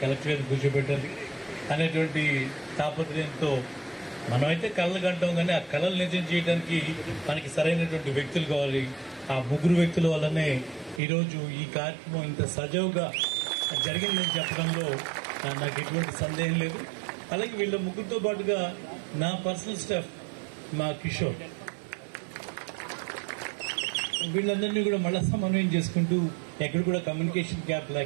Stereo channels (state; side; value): drops out; left; at 11.0 s